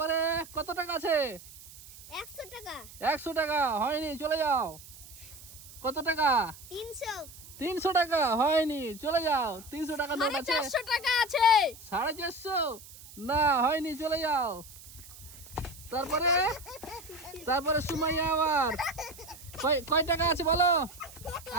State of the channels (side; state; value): right; noise; hiss, 18 dB below the sound